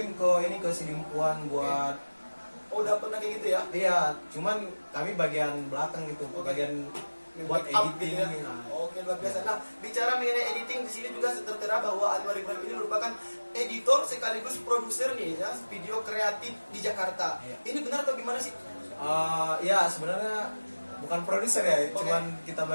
ke Sidimpuan buat Oh udah pernah kayak gitu ya? iya, cuman kami bagian belakang gitu, Oke. bagian buat Make up editing. gitu ya. Oke, luar biasa. Nah, bicara mengenai editing di sini juga tertera bahwa Anwar Ibrahim ini merupakan editor sekaligus produser nih ya, video kreatif di Jakarta. Iya. Ini benar atau gimana sih? Ya sebenarnya bukan produser ya, Oke. cuman kita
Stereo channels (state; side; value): inverted; both; correlation -1.00